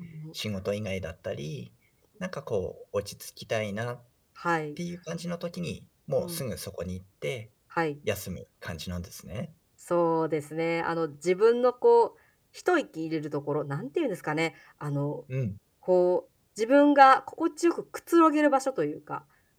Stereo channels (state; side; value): identical; both; correlation 1.00